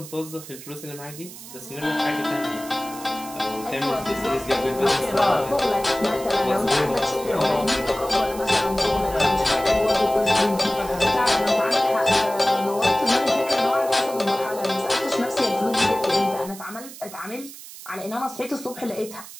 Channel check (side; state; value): right; noise; hiss, 15 dB below the sound